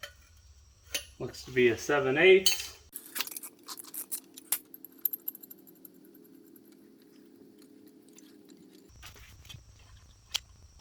Looks to be a 7/8.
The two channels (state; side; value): identical; both; correlation 1.00